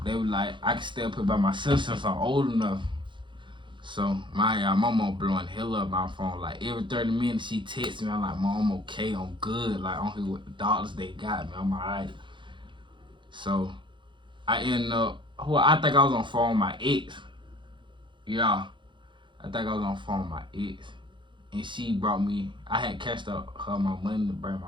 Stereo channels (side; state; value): left; late; 0.23 ms